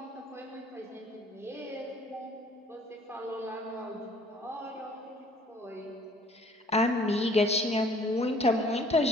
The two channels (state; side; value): normal; both; correlation 0.57